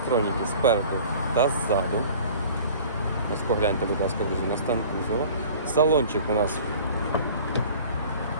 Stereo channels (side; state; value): both; inverted; correlation -0.45